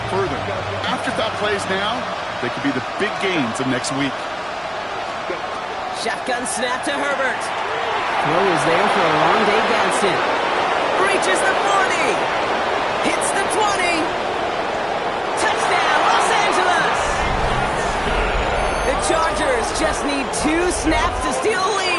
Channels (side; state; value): both; identical; correlation 1.00